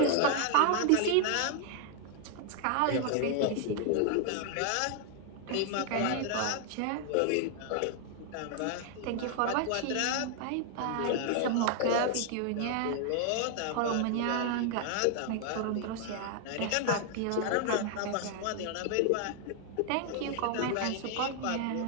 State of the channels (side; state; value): both; different; correlation 0.00